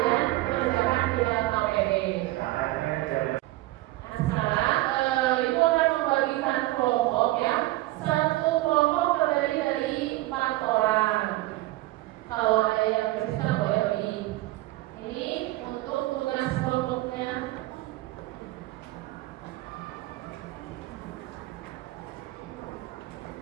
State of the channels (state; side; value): quieter; left; 18.1 dB